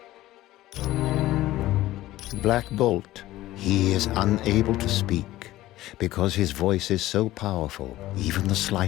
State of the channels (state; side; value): quieter; right; 15.9 dB